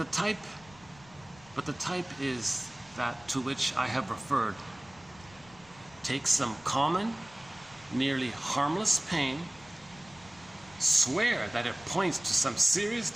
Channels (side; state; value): left; noise; rumble, 24 dB below the sound